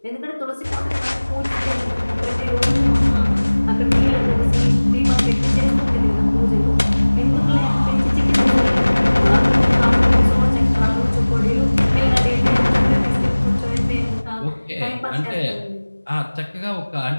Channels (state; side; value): inverted; both; correlation -1.00